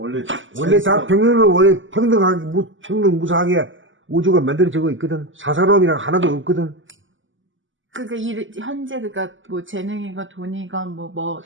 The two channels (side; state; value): left; late; 0.56 ms